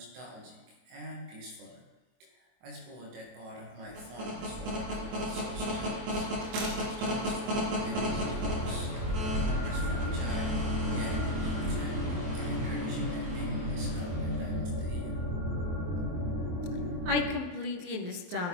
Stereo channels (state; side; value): late; left; 23 ms